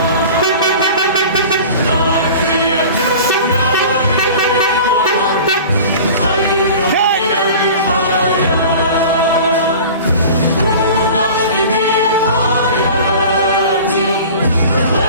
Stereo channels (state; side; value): inverted; both; correlation -0.40